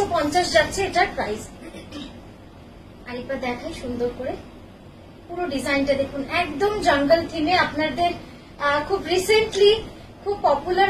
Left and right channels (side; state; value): both; identical; correlation 1.00